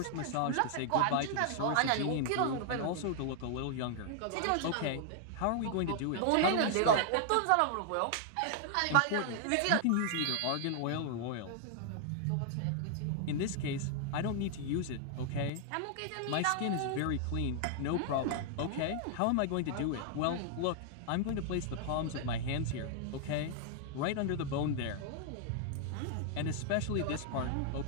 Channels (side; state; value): both; different; correlation 0.00